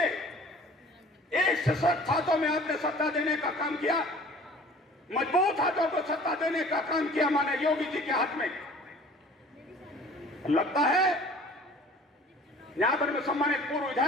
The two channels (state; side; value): normal; both; correlation 0.48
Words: एक सशक्त हाथों में आपने सत्ता देने का काम किया, मजबूत हाथों को सत्ता देने का काम किया माननीय योगी जी के हाथ में। लगता है यहां पर में सम्मानित पूर्व